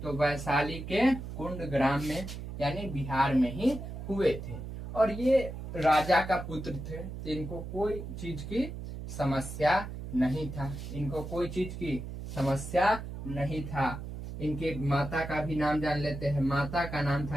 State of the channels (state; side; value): noise; right; hum, 8 dB below the sound